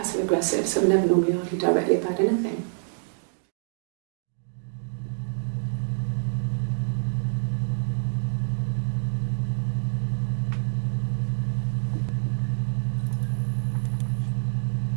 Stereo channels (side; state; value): left; silent; digital silence